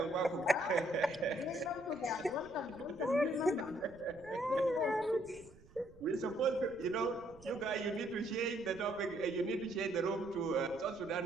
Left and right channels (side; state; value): right; noise; rumble, 23 dB below the sound